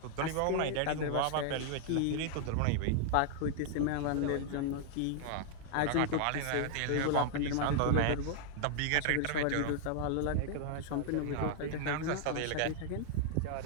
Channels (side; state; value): both; different; correlation 0.00